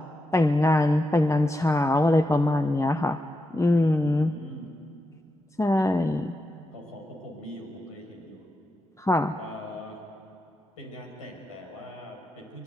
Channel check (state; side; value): normal; both; correlation 0.87